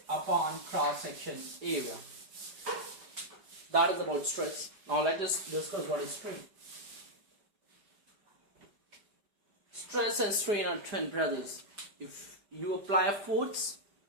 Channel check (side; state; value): left; late; 4.9 ms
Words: upon cross-section area. That is about stress. Now let us discuss what is strain. Stress and strain are twin brothers. If you apply a force,